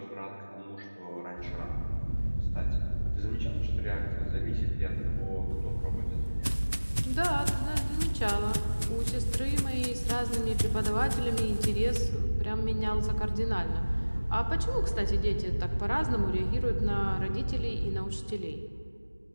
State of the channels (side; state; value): both; inverted; correlation -1.00